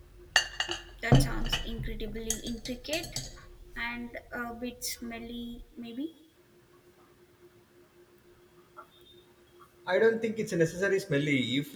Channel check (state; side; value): identical; both; correlation 1.00